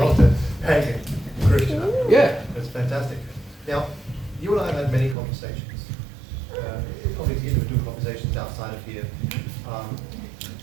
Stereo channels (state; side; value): drops out; left; at 5.2 s